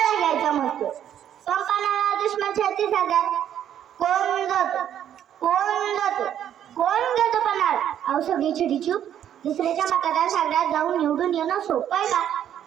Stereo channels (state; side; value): quieter; left; 10.2 dB